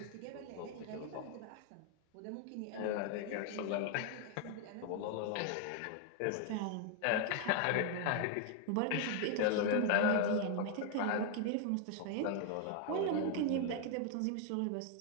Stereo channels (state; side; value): different; both; correlation 0.00